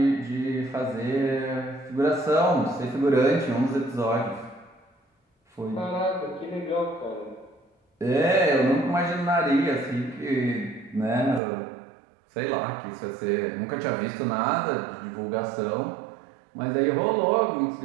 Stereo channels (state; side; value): drops out; left; at 11.4 s